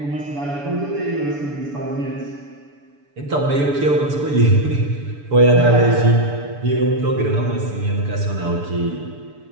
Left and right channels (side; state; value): left; late; 6.9 ms